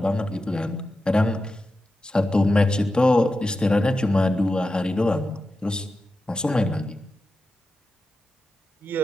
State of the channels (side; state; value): both; normal; correlation 0.91